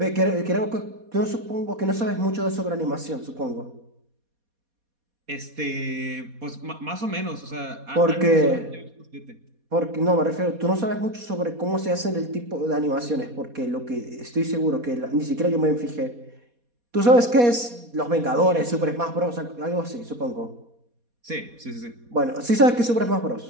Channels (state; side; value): late; left; 4.2 ms